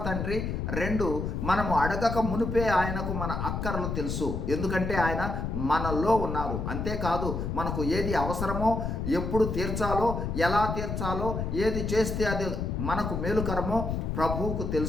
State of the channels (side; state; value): left; noise; rumble, 2 dB below the sound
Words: తండ్రి. 2, మనము అడగక మునిపే ఆయనకు మన అక్కరలు తెలుసు. ఎందుకంటే ఆయన మనలో ఉన్నారు. అంతేకాదు, మనకు ఏది అవసరమో, ఎప్పుడు తీర్చాలో, ఎలా తీర్చాలో, ఏది చేస్తే అది మనకు మేలుకరమో ప్రభువుకు